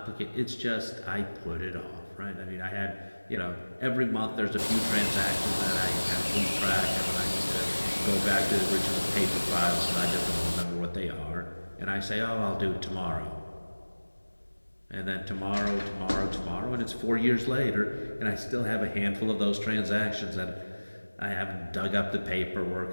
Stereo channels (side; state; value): both; inverted; correlation -1.00